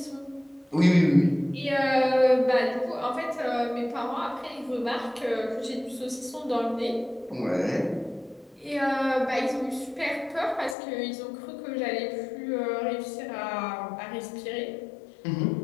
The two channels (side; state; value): right; drops out; at 10.8 s